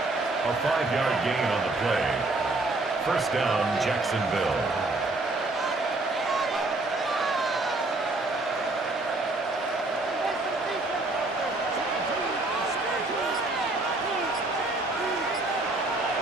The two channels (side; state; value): left; quieter; 3.0 dB